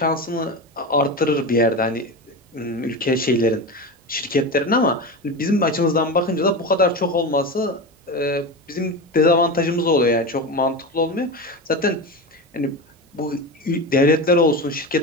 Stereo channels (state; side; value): normal; both; correlation 0.23